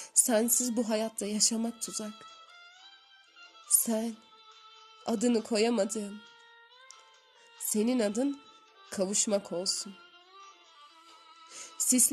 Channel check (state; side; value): identical; both; correlation 1.00